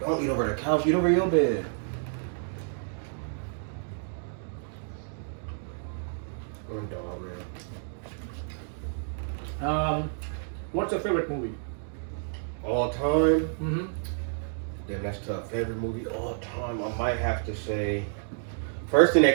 eat over the couch. Eat over your bed. I'm dog, man. What's your favorite movie? All time? Mm-hmm. Damn, that's tough. Favorite movie all time? I might have to say. First thing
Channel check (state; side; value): silent; left; digital silence